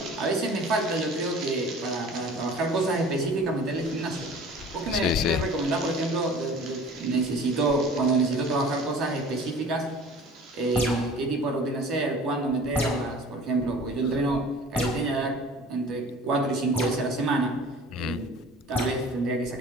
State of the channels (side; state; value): both; normal; correlation 0.44